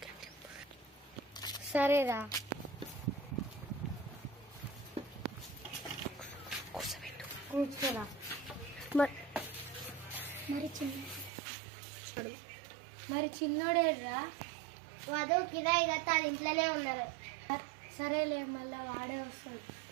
సరేరా. కూర్చోరా. మరి చిన్నోడేరా? వధు కిరాయి కట్టాలి, ఇంట్లోనే ఉన్నారు. సరేలే, మళ్ళా వాడే వస్తాడు.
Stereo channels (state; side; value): drops out; left; at 11.3 s